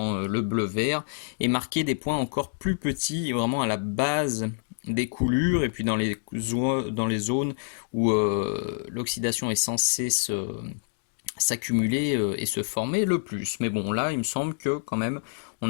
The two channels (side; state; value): right; silent; digital silence